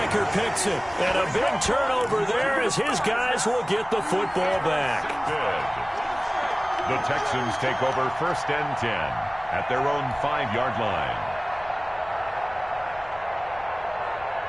picks it. And a big turnover there as his guys will get the football back. Good. The Texans take over 1st and 10 at their own 5-yard line.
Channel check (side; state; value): left; noise; rumble, 23 dB below the sound